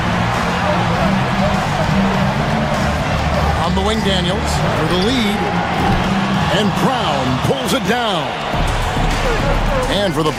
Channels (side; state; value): both; identical; correlation 1.00